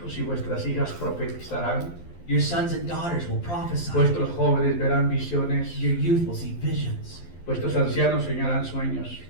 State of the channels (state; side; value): late; right; 12 ms